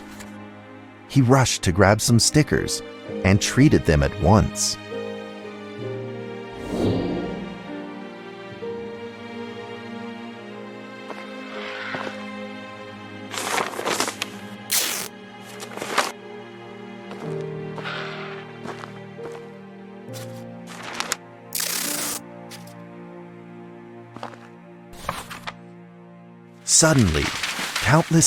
He rushed to grab some stickers and treated them at once. Suddenly,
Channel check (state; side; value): identical; both; correlation 1.00